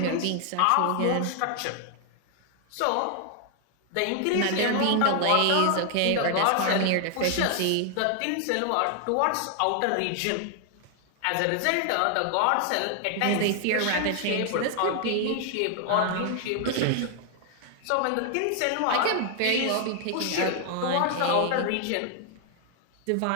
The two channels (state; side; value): different; both; correlation 0.00